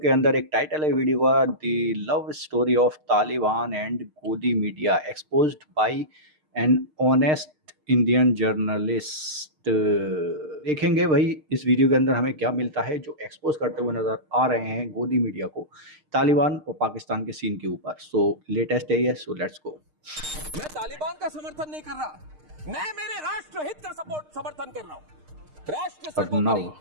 अंदर एक टाइटल है वीडियो का, the love story of Taliban and godi media exposed by an honest Indian journalist. देखेंगे भाई इस वीडियो के अंदर हमें क्या मिलता है जो एक्सपोज करते हुए नजर आ रहे हैं गोदी मीडिया को तालिबान और पाकिस्तान के सीन के ऊपर। सो लेटेस्ट है ये, सो लेट्स गो। मैं तालिबान का समर्थन नहीं कर रहा, मैं मेरे राष्ट्र हित का समर्थन कर रहा हूँ। राष्ट्र सर्वोपरि,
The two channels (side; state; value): left; late; 6.5 ms